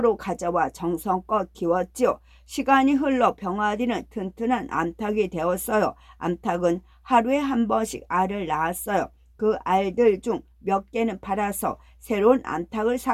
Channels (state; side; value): identical; both; correlation 1.00